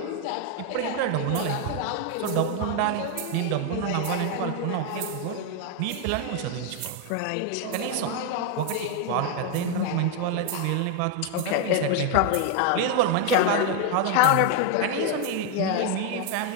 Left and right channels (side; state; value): both; different; correlation 0.01